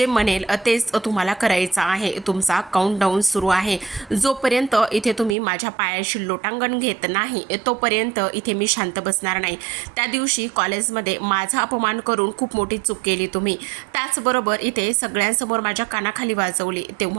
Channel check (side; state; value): left; drops out; at 5.4 s